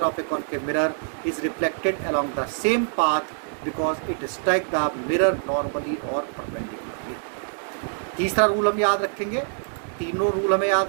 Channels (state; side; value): silent; left; digital silence